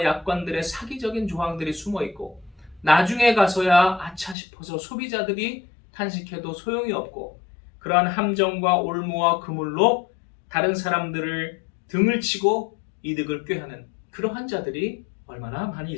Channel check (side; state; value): right; drops out; at 4.4 s